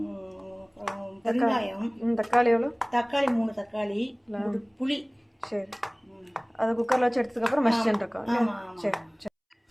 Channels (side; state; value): both; identical; correlation 1.00